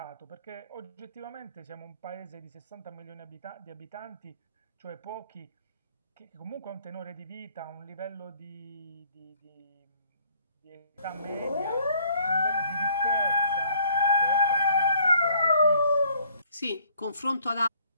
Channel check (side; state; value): both; inverted; correlation -0.62